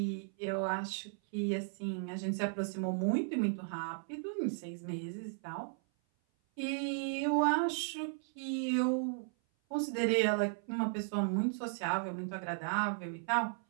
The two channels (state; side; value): silent; left; 54 dB below the other